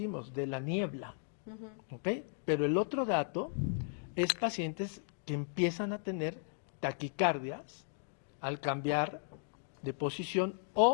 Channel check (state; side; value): silent; right; digital silence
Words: de la niebla, ¿okay? Pero el otro dato es pacientes que empiezan a tener taquicardias al cambiar de posición